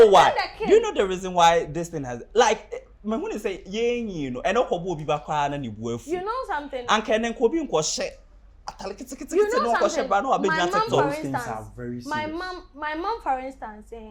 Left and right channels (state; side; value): identical; both; correlation 1.00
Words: why? Do you know the reason why this thing has like me when say you know, and okobo obi ba kwa na ni buafu. You know something? And can then kobi nko hye. You know something? Those things are very serious. My mom, for instance,